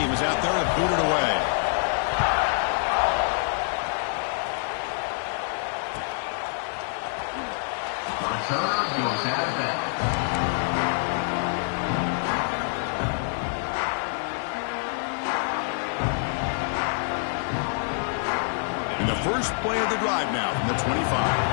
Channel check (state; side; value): silent; right; digital silence